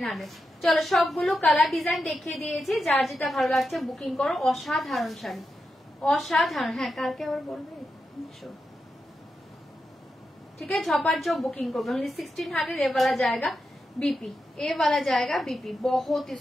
চলো সবগুলো কালার ডিজাইন দেখিয়ে দিয়েছি, যার যেটা ভালো লাগছে বুকিং করো। অসাধারণ শাড়ি, অসাধারণ। হ্যাঁ কালকে আবার বলবে। ठीक है, झपाट जो बुकिंग को ओनली 1600। ये वाला जाएगा बीपी, ये वाला जाएगा बीपी, बहुत ही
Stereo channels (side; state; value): both; normal; correlation 0.88